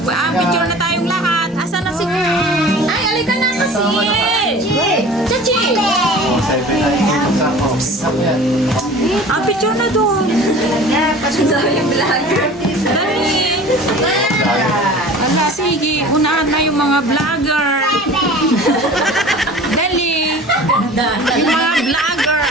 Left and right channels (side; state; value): both; normal; correlation 0.42